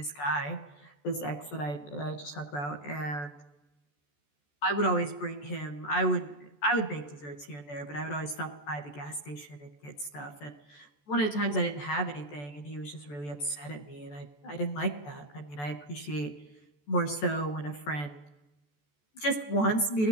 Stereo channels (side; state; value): right; late; 14 ms